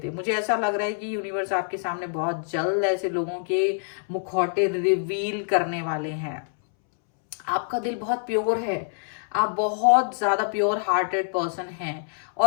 थे। मुझे ऐसा लग रहा है कि यूनिवर्स आपके सामने बहुत जल्द ऐसे लोगों के मुखौटे रिवील करने वाले हैं। आपका दिल बहुत प्योर है, आप बहुत ज्यादा प्योर हार्टेड पर्सन हैं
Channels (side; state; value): right; silent; 61 dB below the other